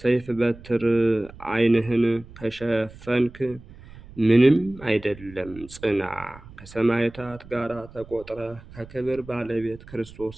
በትር ዓይንህን ከሸፈንክ ምንም አይደለም፣ ጽና፣ ከሰማዕታት ጋር ተቆጥረህ ከክብር ባለቤት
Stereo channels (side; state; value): right; noise; rumble, 19 dB below the sound